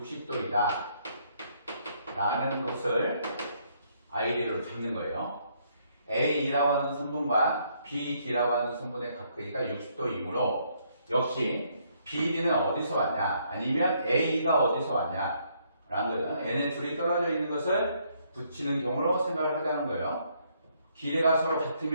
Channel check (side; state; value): both; inverted; correlation -0.70